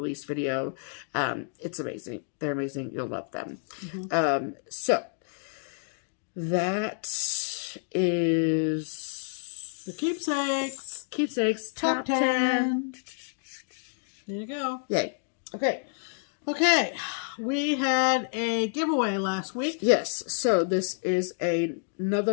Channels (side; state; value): right; silent; 59 dB below the other